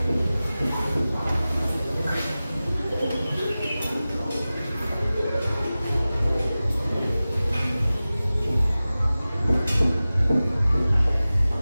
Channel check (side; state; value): both; inverted; correlation -0.96